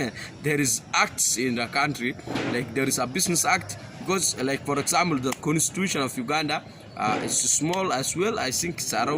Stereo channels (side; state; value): both; identical; correlation 1.00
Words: there is acts in the country. Like there is a business act, because like for example, the constitution of Uganda is small as well. I think it's